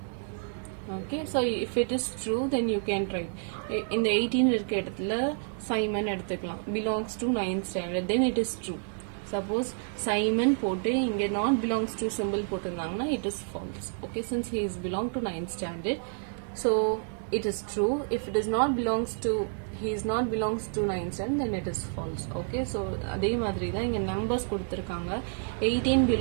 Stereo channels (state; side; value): silent; left; 58 dB below the other